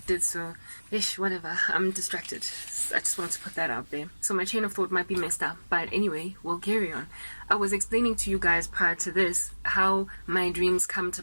so, whatever, I'm distracted. I just want to put that out there. So my chain of thought might be messed up, but anyway, we'll carry on. I was explaining to you guys prior to this how my dreams come to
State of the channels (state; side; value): inverted; both; correlation -1.00